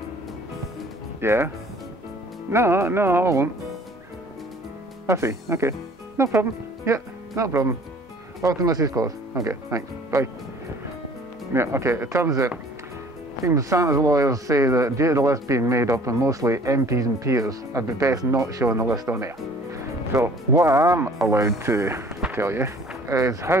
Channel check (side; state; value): both; normal; correlation 0.52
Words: Yeah. No, I won't. I see. Okay. No problem. Yeah, no problem. Off to Mrs. Claus. Okay, thanks. Bye. Yeah, okay. It turns out, seems Santa's lawyers say that due to the list being made up of mostly MPs and peers, I'd be best not showing the list on air. So, what I'm allowed to tell you is